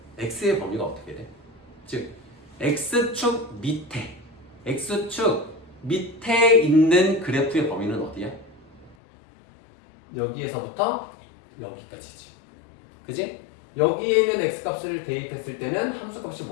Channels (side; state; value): right; drops out; at 9.0 s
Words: x의 범위가 어떻게 돼? 즉 x축 밑에 있는 그래프의 범위는 어디야? 여기에서부터 여기까지지. 그지? 여기에 있는 x값을 대입했을 때는 함수값이